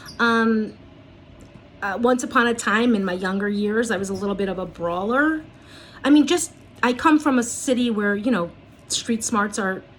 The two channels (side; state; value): both; identical; correlation 1.00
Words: Once upon a time in my younger years, I was a little bit of a brawler. I mean, I come from a city where, street smarts are